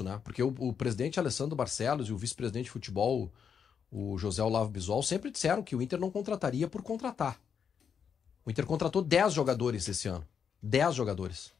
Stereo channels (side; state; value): right; quieter; 7.2 dB